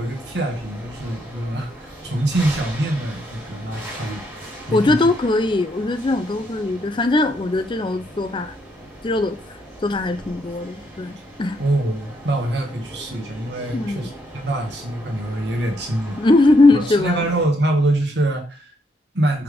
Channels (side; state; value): both; normal; correlation 0.75